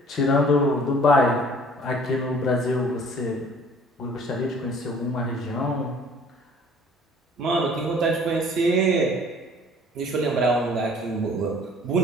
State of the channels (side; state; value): both; normal; correlation 0.53